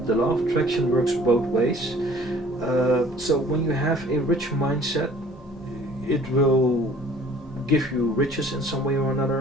the law of attraction works both ways. So when you have a rich mindset, it will give you riches in some way or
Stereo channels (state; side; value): normal; both; correlation 0.52